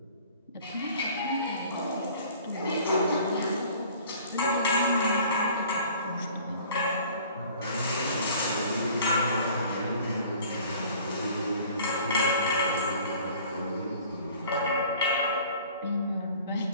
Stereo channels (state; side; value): inverted; both; correlation -0.49